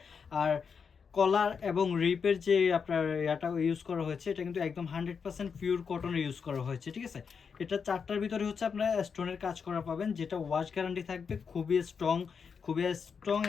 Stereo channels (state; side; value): quieter; right; 6.1 dB